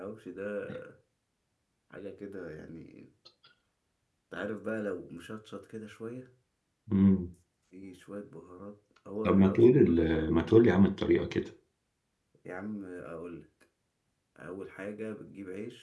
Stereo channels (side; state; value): both; identical; correlation 1.00